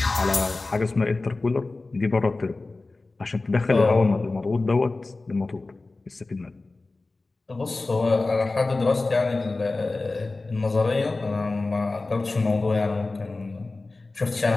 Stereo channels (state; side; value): quieter; right; 3.4 dB